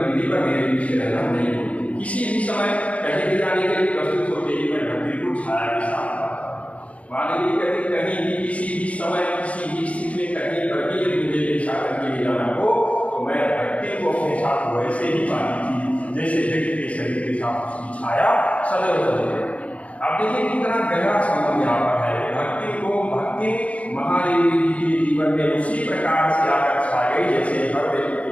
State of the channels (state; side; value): late; right; 0.065 ms